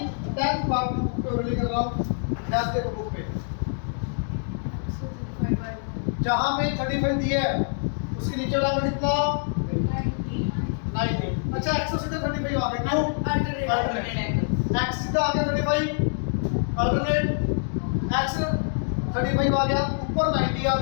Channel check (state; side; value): silent; right; digital silence